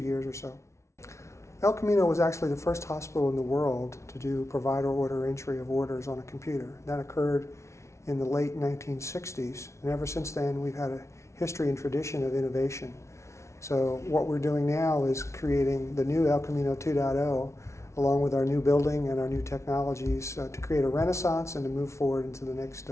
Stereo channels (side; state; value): right; late; 0.13 ms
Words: or so. El Camino was actually the first hospital in the world to do provider order entry of orders on a computer. That occurred in the late 1960s, and ever since then we've had a history and tradition of innovation. So what we're doing now is creating the new El Camino 2.0 along with our new building and our new technologies to create a renaissance and to move forward into the next